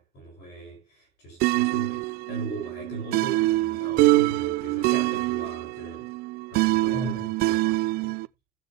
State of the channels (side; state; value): left; quieter; 15.3 dB